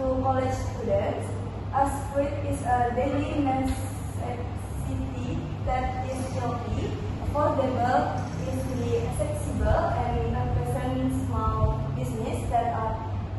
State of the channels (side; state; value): both; identical; correlation 1.00